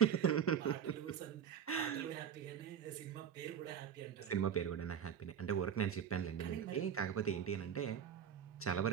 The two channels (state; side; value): quieter; left; 8.4 dB